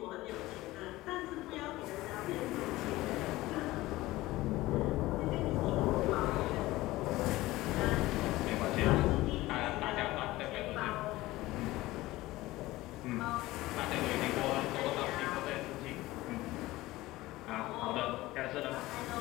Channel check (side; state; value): right; quieter; 18.2 dB